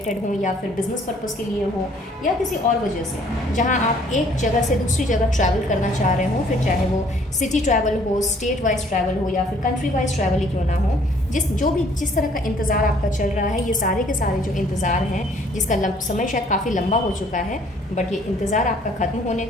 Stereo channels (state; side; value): normal; both; correlation 0.60